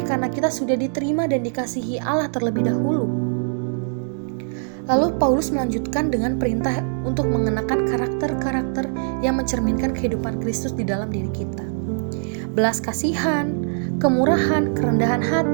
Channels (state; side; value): silent; left; digital silence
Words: karena kita sudah diterima dan dikasihi Allah terlebih dahulu. Lalu Paulus melanjutkan dengan perintah untuk mengenakan karakter-karakter yang mencerminkan kehidupan Kristus di dalam diri kita. Belas kasihan, kemurahan, kerendahan